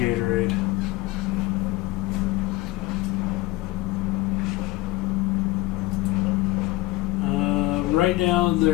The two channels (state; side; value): quieter; right; 18.3 dB